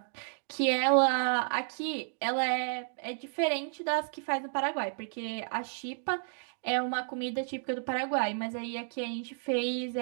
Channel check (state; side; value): silent; left; digital silence